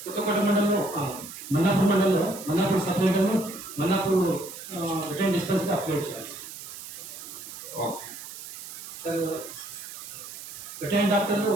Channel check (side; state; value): right; noise; hiss, 12 dB below the sound